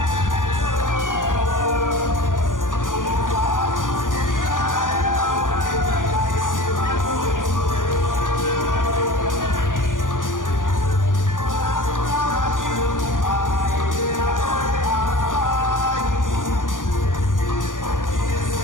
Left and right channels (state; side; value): late; right; 0.88 ms